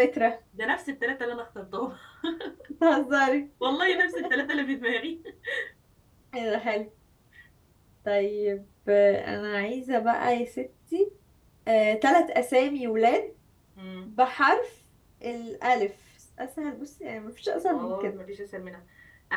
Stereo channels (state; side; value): identical; both; correlation 1.00